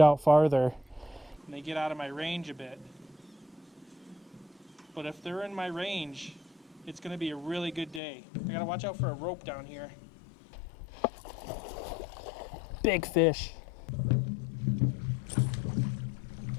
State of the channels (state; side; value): drops out; right; at 8.0 s